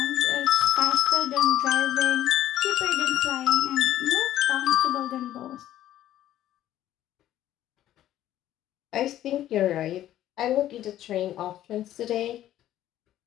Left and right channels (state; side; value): quieter; right; 12.7 dB